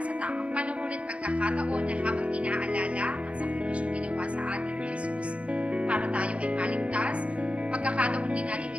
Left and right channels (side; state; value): left; late; 0.062 ms